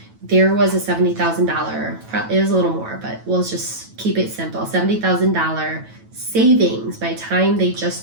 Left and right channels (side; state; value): left; late; 9.1 ms